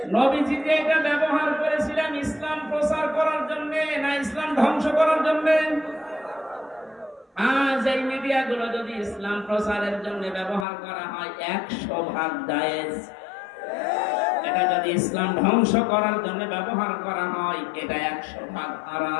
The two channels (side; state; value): right; drops out; at 10.7 s